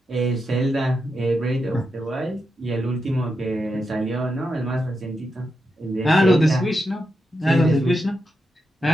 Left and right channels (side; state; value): both; normal; correlation 0.86